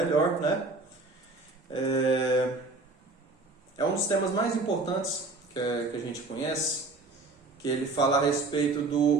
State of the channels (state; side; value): quieter; left; 3.4 dB